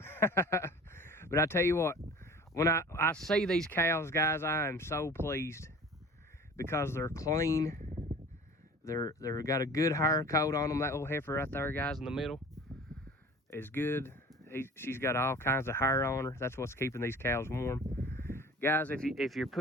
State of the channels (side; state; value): both; normal; correlation 0.43